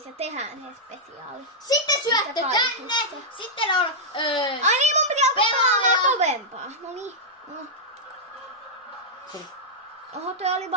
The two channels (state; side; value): normal; both; correlation -0.08